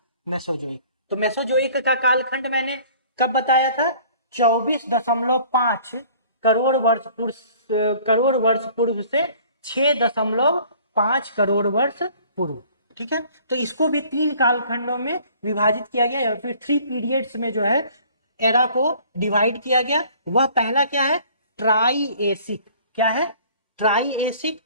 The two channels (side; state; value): both; inverted; correlation -0.52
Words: मेसोजोइक। तो मेसोजोइक का कालखंड मैंने कब बताया था? 24.5 करोड़ वर्ष पूर्व से 6.5 करोड़ वर्ष पूर्व। ठीक है। तो इसको भी 3 कालखंडों में विभाजित किया गया, या फिर 3 पीरियड्स में जो है एरा को डिवाइड किया गया। वह पहला क्या है? ट्राइएसिक। क्या है? ट्राइएसिक।